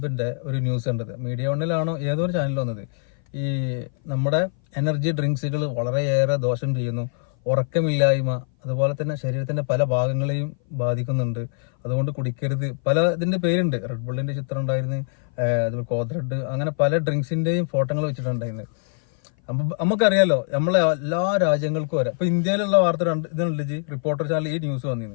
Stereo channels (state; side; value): silent; right; 58 dB below the other